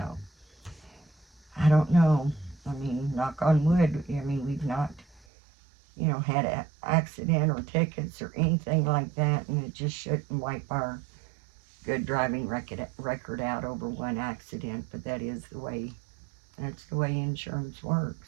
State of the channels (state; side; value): drops out; left; at 5.2 s